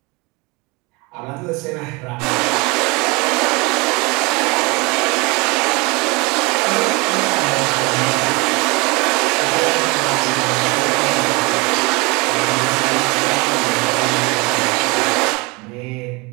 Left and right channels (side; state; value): left; quieter; 26.8 dB